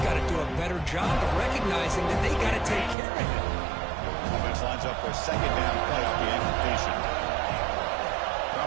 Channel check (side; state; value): left; drops out; at 3.0 s